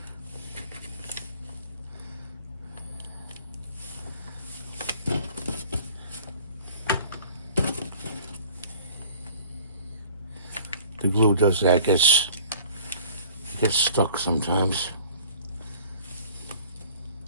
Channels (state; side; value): inverted; both; correlation -0.48